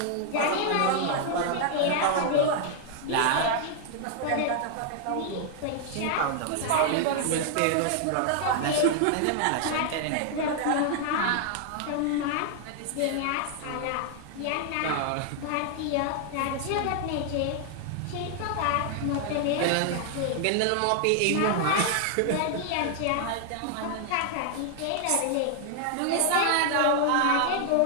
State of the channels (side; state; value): both; different; correlation 0.00